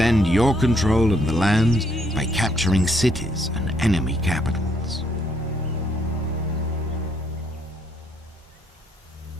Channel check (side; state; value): both; normal; correlation 0.71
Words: your control of the lands by capturing cities and enemy capitals.